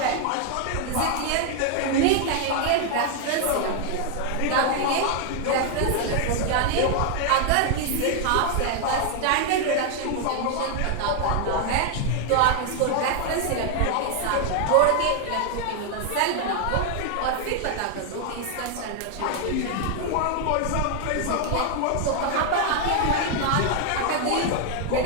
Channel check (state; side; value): different; both; correlation 0.00